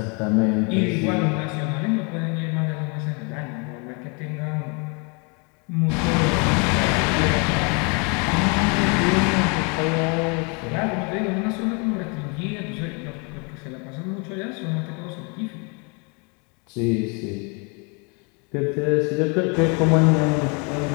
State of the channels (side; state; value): right; quieter; 33.5 dB